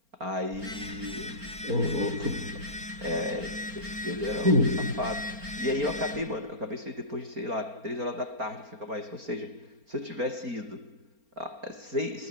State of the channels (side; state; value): left; late; 4.3 ms